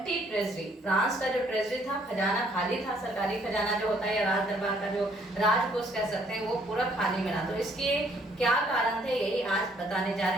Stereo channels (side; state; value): both; normal; correlation 0.64